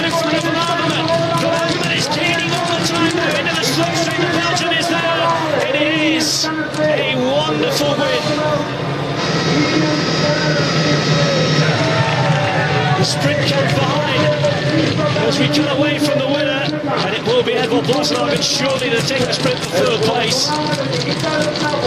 front of Van Avermaet. Van Avermaet is gaining all the time now into the slipstream. The Belgian is there. It is a wonderful win. The sprint comes behind as we cut away from the winner, and it will be Edvald Boasson surely to take the sprint for third place.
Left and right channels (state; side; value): identical; both; correlation 1.00